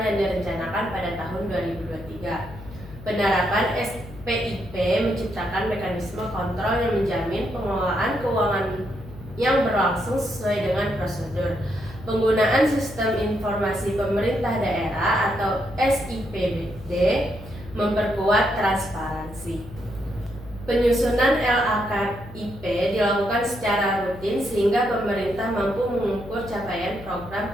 yang direncanakan pada tahun 2023. Penerapan SPIP menciptakan mekanisme kontrol yang menjamin pengelolaan keuangan yang berlangsung sesuai dengan prosedur. Penggunaan Sistem Informasi Pemerintah Daerah atau SIPD memperkuat transparansi. Penyusunan LAKIP dilakukan secara rutin sehingga pemerintah mampu mengukur capaian program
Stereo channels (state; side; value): noise; left; hum, 16 dB below the sound